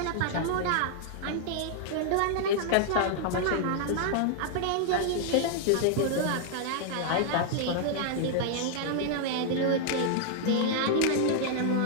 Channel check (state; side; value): different; both; correlation 0.00